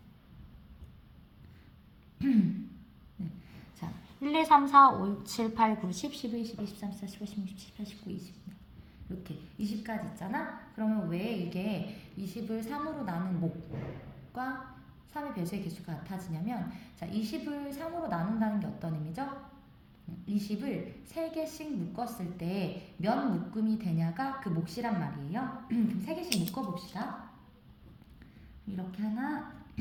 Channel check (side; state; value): both; identical; correlation 1.00